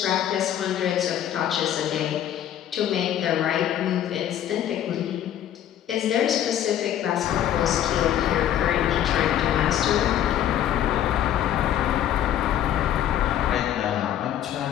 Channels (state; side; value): quieter; right; 11.0 dB